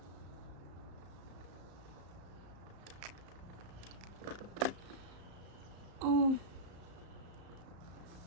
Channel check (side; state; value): left; late; 34 ms